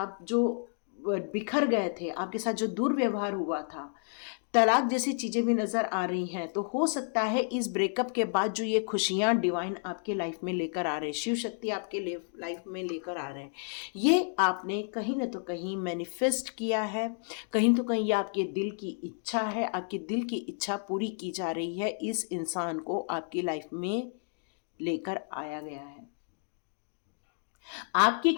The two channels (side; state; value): right; silent; 57 dB below the other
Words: जो बिखर गए थे, आपके साथ जो दुर्व्यवहार हुआ था, तलाक जैसी चीज़ें भी नज़र आ रही हैं, तो हो सकता है इस ब्रेकअप के बाद जो ये खुशियाँ डिवाइन आपके लाइफ में लेकर आ रहे हैं, शिव शक्ति आपके लाइफ में लेकर आ रहे हैं, ये आपने कहीं ना तो कहीं मैनिफेस्ट किया है, कहीं तो कहीं ये आपके दिल की इच्छा है, आपके दिल की इच्छा पूरी की जा रही है। इस इंसान को आपकी लाइफ में लेकर आया गया है। आपकी